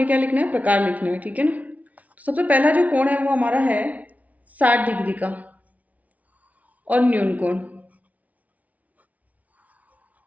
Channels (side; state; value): left; late; 0.071 ms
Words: क्या लिखना है, प्रकार लिखना है, ठीक है ना। तो सबसे पहला जो कोण है वो हमारा है 60 डिग्री का और न्यून कोण।